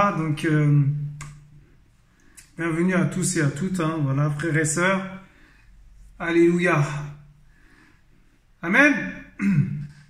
donc... bienvenue à tous et à toutes, voilà, frères et sœurs. Alléluia. Amen.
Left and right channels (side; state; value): both; identical; correlation 1.00